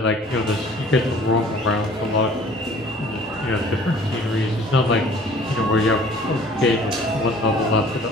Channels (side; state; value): both; normal; correlation 0.51